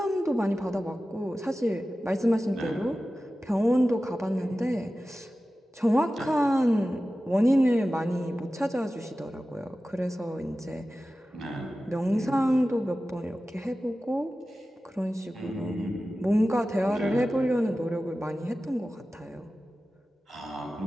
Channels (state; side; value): normal; both; correlation 0.95